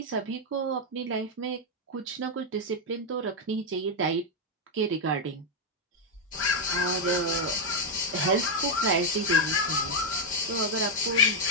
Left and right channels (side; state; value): both; normal; correlation 0.00